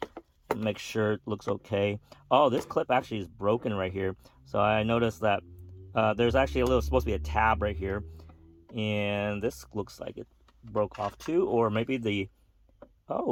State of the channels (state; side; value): identical; both; correlation 1.00